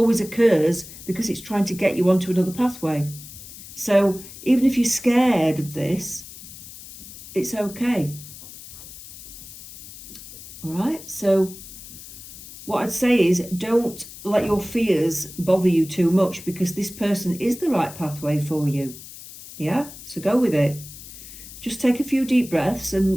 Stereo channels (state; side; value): noise; left; hiss, 15 dB below the sound